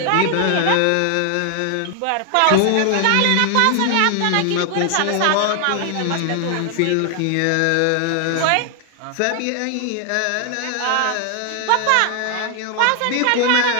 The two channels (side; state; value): both; different; correlation 0.00